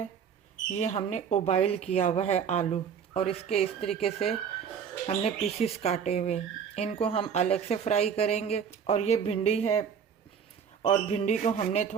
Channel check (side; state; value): left; quieter; 7.3 dB